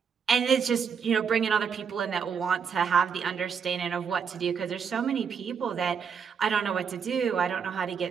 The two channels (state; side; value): quieter; left; 6.6 dB